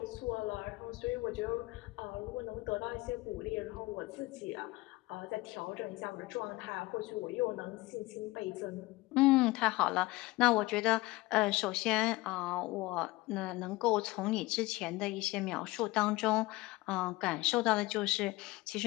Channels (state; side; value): quieter; right; 20.8 dB